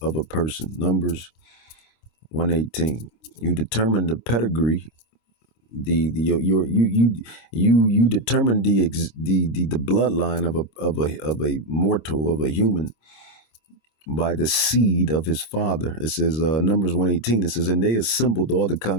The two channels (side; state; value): right; late; 25 ms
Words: person. Numbers 1:18. You determine the pedigree. You determine the bloodline of a mortal, of a human, by the seed of his father. It says Numbers 1:18. It says, and they assembled all the